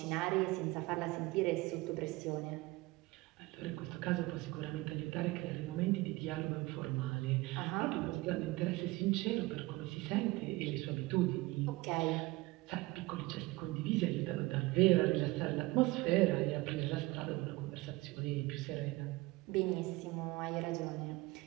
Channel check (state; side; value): quieter; left; 21.3 dB